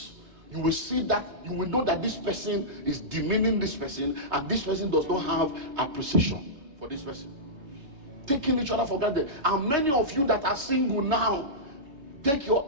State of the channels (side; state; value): left; late; 3.4 ms